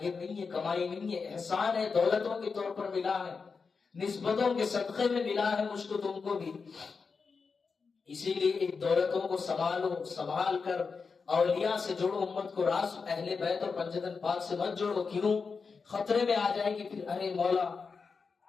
نہیں ہے، کمائی نہیں ہے، احسان ہے، دولتوں کے طور پر ملا ہے، نسبتوں کے صدقے میں ملا ہے مجھ کو تم کو بھی۔ اسی لیے ایک دولتوں کو سنبھالو، سنبھال کر اولیاء سے جوڑو، امت کو راس اہل بیت اور پنجتن پاک سے مت جوڑو، کیوں؟ خطرے میں آ جائے گی پھر، ارے مولا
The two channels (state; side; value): quieter; right; 5.0 dB